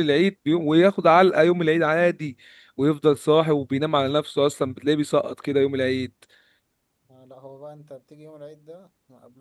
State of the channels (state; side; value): identical; both; correlation 1.00